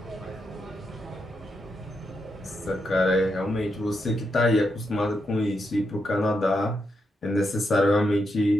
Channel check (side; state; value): both; normal; correlation 0.83